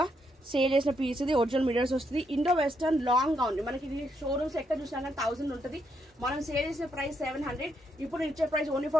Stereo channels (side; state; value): both; normal; correlation 0.77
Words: సేల్ చేసిన పీస్ ఇది ఒరిజినల్ మిరర్స్ వస్తుంది ఇండో వెస్టర్న్ లాంగ్ గౌన్ మనకి ఇది షోరూమ్స్ ఎక్కడ చూసినా కానీ 1000 ఉంటుంది మనం సేల్ చేసే ప్రైస్ 700 ఇప్పుడు ఇచ్చే ప్రైస్ ఓన్లీ